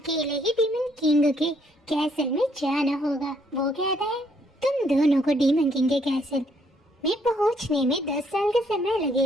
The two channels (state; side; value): normal; both; correlation 0.69